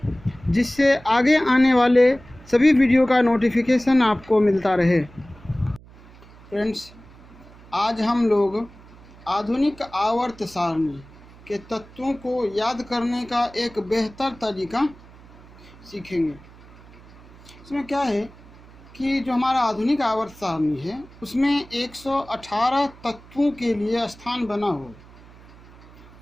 जिससे आगे आने वाले सभी वीडियो का नोटिफिकेशन आपको मिलता रहे। फ्रेंड्स, आज हम लोग आधुनिक आवर्त सारणी के तत्वों को याद करने का एक बेहतर तरीका सीखेंगे। इसमें क्या है कि जो हमारा आधुनिक आवर्त सारणी है उसमें 118 तत्वों के लिए स्थान बना हो।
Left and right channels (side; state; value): right; noise; hum, 22 dB below the sound